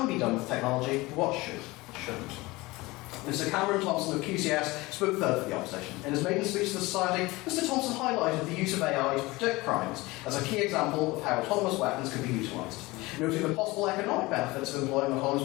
be done with technology, but what shouldn't. Mr. Cameron Thompson of QCS spoke third for the opposition. In his maiden speech to the Society, Mr. Thompson highlighted the use of AI to predict crimes as a key example of how autonomous weapons could be utilised. Noting the possible economic benefits of employing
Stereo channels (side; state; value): right; quieter; 21.5 dB